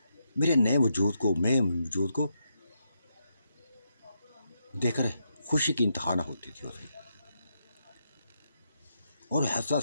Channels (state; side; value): inverted; both; correlation -0.81